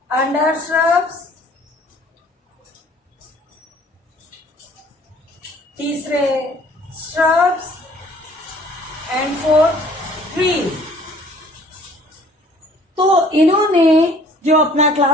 अंडर श्रब्स, तीसरे श्रब्स एंड फोर्थ ट्रीज। तो इन्होंने जो अपना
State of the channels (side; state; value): both; normal; correlation 0.55